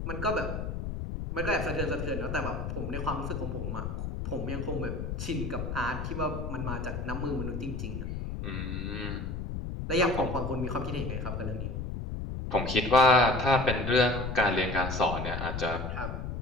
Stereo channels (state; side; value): noise; left; rumble, 5 dB below the sound